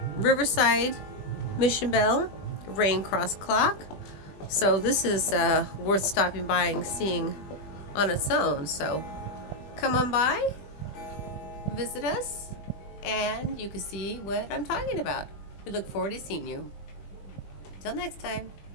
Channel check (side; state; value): right; late; 20 ms